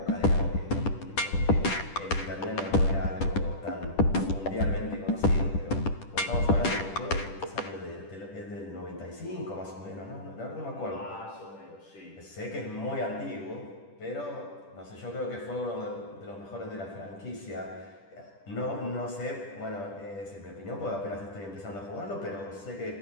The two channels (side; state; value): right; late; 10 ms